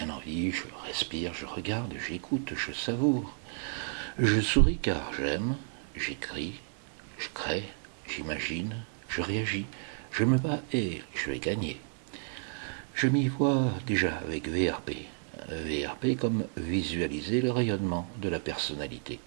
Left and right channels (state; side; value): silent; left; digital silence